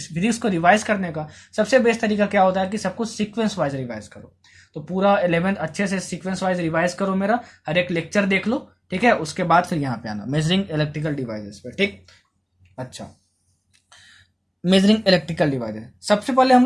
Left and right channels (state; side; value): identical; both; correlation 1.00